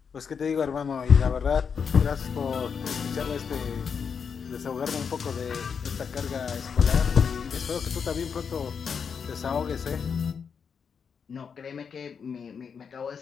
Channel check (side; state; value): right; quieter; 6.4 dB